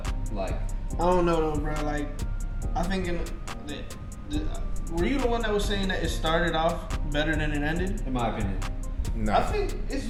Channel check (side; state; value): both; identical; correlation 1.00